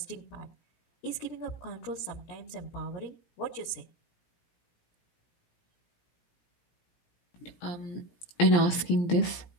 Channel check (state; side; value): late; right; 17 ms